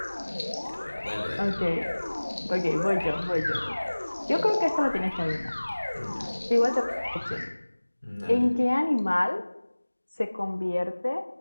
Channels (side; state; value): both; inverted; correlation -1.00